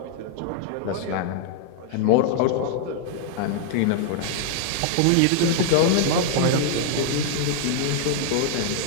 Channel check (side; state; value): both; different; correlation 0.00